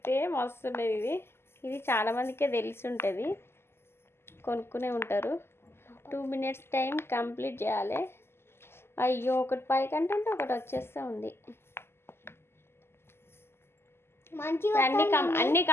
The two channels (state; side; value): late; right; 0.12 ms